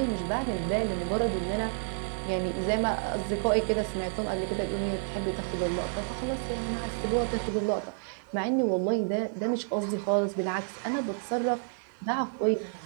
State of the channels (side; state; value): left; silent; digital silence